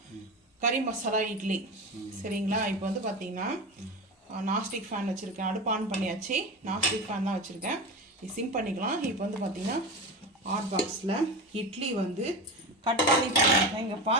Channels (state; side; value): normal; both; correlation 0.25